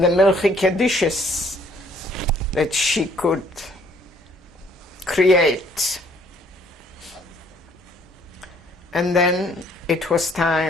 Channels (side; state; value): both; normal; correlation 0.62